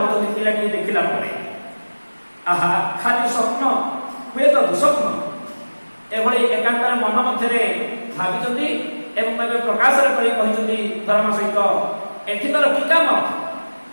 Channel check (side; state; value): both; inverted; correlation -1.00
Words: ପିଲାଟି ଦେଖିଲା ପରେ। ଆହା ଖାଲି ସ୍ୱପ୍ନ, ହୁଏତ ଦୁଃସ୍ୱପ୍ନ, ଏଭଳି ଏକାନ୍ତରେ ମନ ମଧ୍ୟରେ ଭାବିଛନ୍ତି ଏବଂ ଏବେ ପ୍ରକାଶରେ କରି କହିଛନ୍ତି ଧର୍ମା ସହିତ, ଏଠି ତୋର କି କାମ?